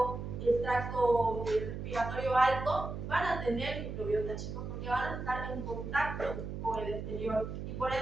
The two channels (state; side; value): noise; right; hum, 6 dB below the sound